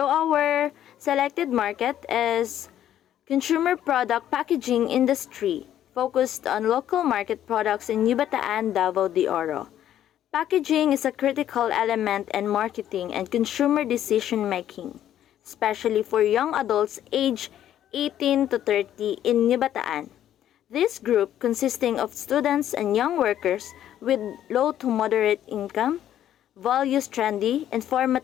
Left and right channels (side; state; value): right; quieter; 11.3 dB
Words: our selected market is consumer product packaging industry, focused on local market products in New Bataan, Davao de Oro. Packaging is a critical element in marketing and consumer decision making, especially for young adults aged 18 to 30 in New Bataan. This group, consisting of students and young workers with low to moderate income, values trendy,